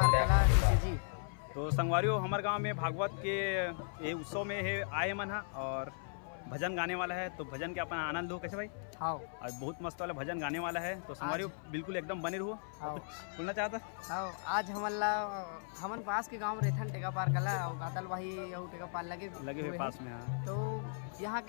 कला जी। तो संगवारी हो हमारे गांव में भागवत के ये उत्सव में है आए मन है और भजन गाने वाला है। तो भजन के अपना आनंद हो कैसे भाई? हाँ आज बहुत मस्त वाला भजन गाने वाला है। तो संगवारी हो बिल्कुल एकदम बने रहो। कुछ बोलना चाहता? हाँ आज हमन पास के गांव रहथन टेकापार कला और गातल वही और टेकापार लगे हुए पास में। हाँ तो यहाँ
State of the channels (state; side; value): silent; right; 53 dB below the other